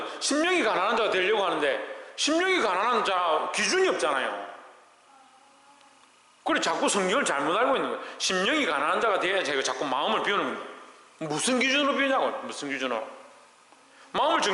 심령이 가난한 자가 되려고 하는데 심령이 가난한 자 기준이 없잖아요. 그래 자꾸 성경을 잘못 알고 있는 거예요. 심령이 가난한 자가 돼야 제가 자꾸 마음을 비우는 겁니다. 무슨 기준으로 비우냐고. 무슨 기준으로? 마음을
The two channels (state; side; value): identical; both; correlation 1.00